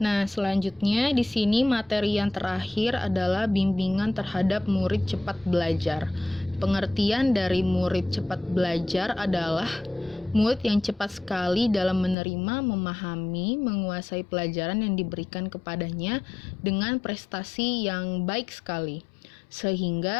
selanjutnya di sini materi yang terakhir adalah bimbingan terhadap murid cepat belajar. Pengertian dari murid cepat belajar adalah murid yang cepat sekali dalam menerima, memahami, menguasai pelajaran yang diberikan kepadanya dengan prestasi yang baik sekali.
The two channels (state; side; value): drops out; right; at 12.2 s